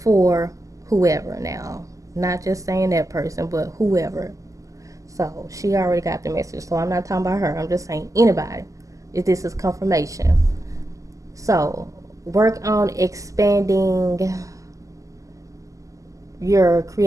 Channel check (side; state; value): left; late; 0.16 ms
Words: whoever now. Not just saying that person, but whoever. So she already got the message. So I'm not talking about her. I'm just saying anybody. If this is confirmation. So work on expanding your